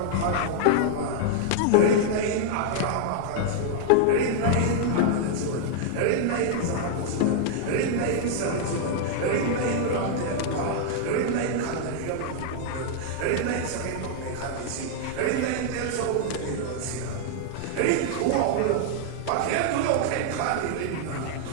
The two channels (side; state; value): both; different; correlation -0.01